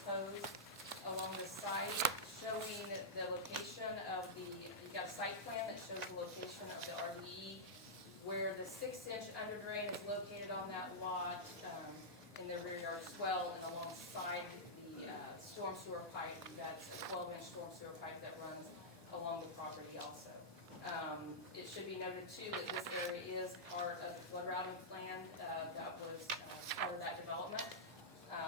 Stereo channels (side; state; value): both; normal; correlation -0.10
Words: along the site, showing the location of you've got a site plan that shows the location of the RDE, where the 6-inch under drain is located on that lot, in the rear yard swell, and alongside the storm sewer pipe. That's a 12-inch storm sewer pipe that runs along the property also. It should be noted too that this area is part of the flood routing plan that was part of that development.